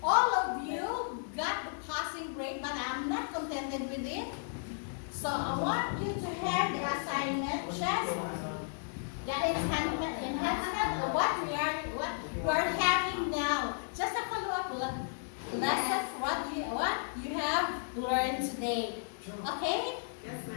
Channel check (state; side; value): silent; right; digital silence